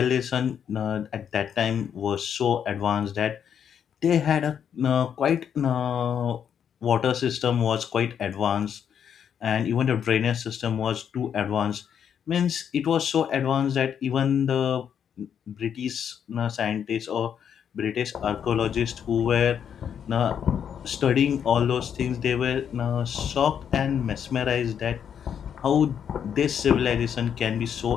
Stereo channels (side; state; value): right; quieter; 8.3 dB